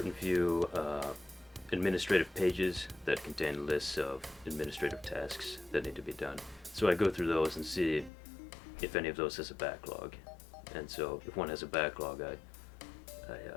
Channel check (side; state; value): right; drops out; at 8.1 s